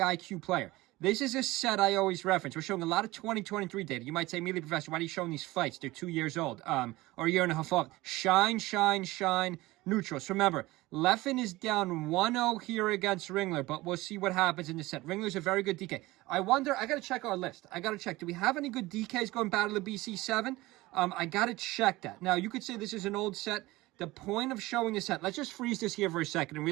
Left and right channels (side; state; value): left; quieter; 19.5 dB